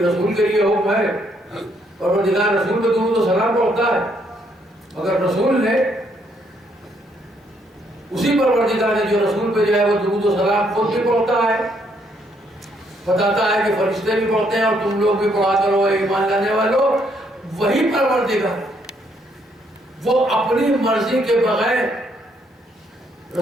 کے لیے حکم ہے. پروردگار رسول پہ درود و سلام پڑھتا ہے، مگر رسول نے اسی پروردگار نے جو رسول پہ جو ہے وہ درود و سلام خود بھی پڑھتا ہے، بتاتا ہے کہ فرشتے بھی پڑھتے ہیں اور تم لوگ بھی پڑھا کرو اے ایمان لانے والوں. وہی پروردگار وہ اپنی مرضی کے بغیر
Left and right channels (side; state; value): both; normal; correlation 0.71